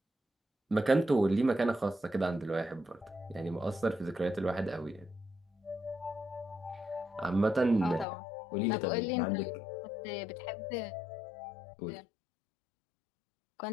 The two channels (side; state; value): right; drops out; at 8.1 s